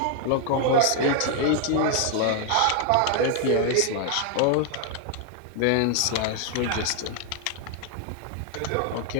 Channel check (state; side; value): different; both; correlation 0.00